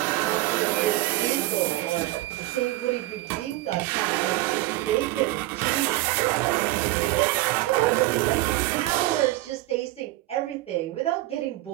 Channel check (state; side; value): quieter; left; 17.6 dB